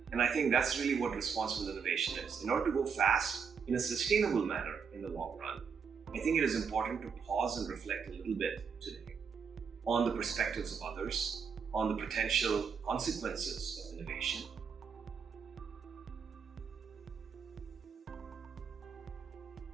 And I think that's really what responsible innovation is. In order to go fast in a sustainable manner in the long run, I think it is important to pause and reflect a little bit today on the perspectives of others, on the potential consequences of innovation.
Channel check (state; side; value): quieter; left; 6.2 dB